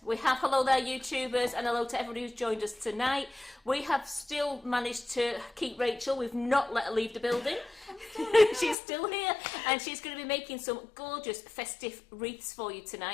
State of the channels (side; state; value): right; drops out; at 8.8 s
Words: We have hello there, YouTubers, and hello to everybody who's joined us tonight. We have still managed to keep Rachel. We've not let her leave the building. She's still here, and she's going to be making some gorgeous festive wreaths for you